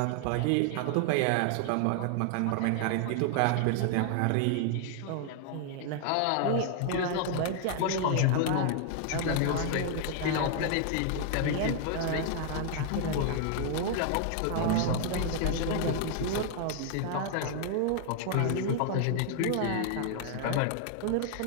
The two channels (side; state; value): both; different; correlation 0.00